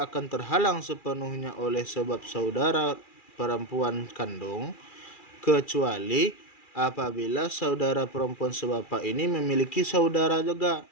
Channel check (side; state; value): right; late; 2.4 ms